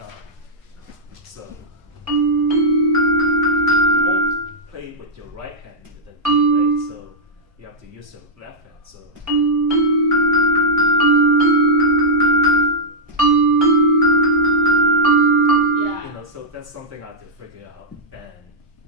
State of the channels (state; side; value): normal; both; correlation -0.07